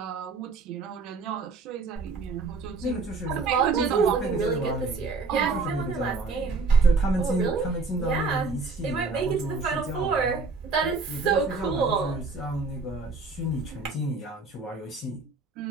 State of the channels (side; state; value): left; quieter; 4.1 dB